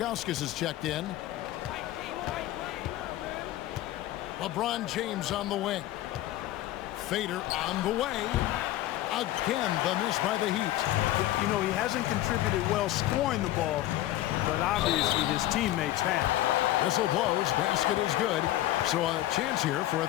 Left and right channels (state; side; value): quieter; right; 14.9 dB